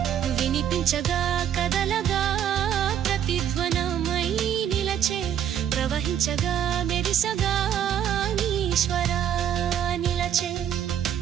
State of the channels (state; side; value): quieter; left; 9.6 dB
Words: వినిపించగా కదలగా ప్రతిధ్వనమై నిలచే ప్రవహించగా మెరిసగా ఈశ్వరా నిలచే